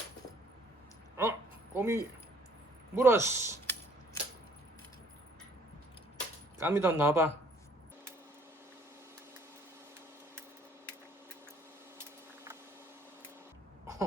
꼬미 물었어. 까미도 나와봐.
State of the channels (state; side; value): normal; both; correlation 0.60